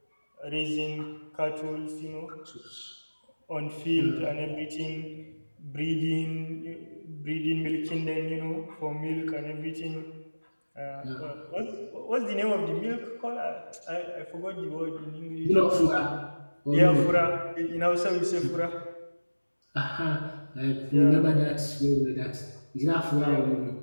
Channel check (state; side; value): inverted; both; correlation -1.00